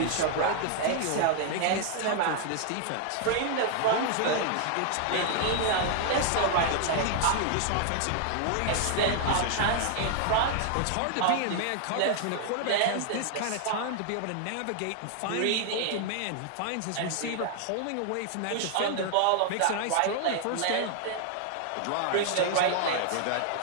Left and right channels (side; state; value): both; different; correlation 0.00